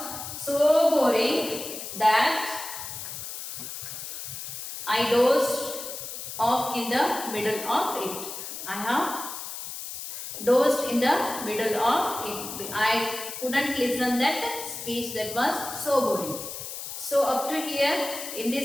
so boring that I dozed off in the middle of it. I have dozed in the middle of it. I couldn't listen that speech that was so boring. So up to here in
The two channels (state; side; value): noise; left; hiss, 8 dB below the sound